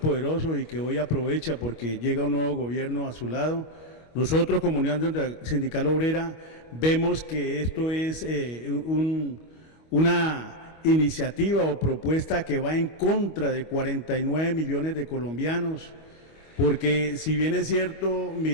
y que hoy aprovecha porque llega un nuevo gobierno a su lado. Nosotros como Unión Sindical Obrera vemos que esto es una iniciativa o propuesta que va en contra de 49 millones de colombianos, porque si bien es cierto,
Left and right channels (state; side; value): late; right; 25 ms